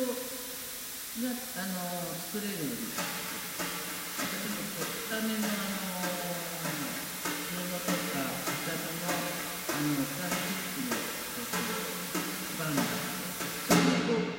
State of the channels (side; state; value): both; identical; correlation 1.00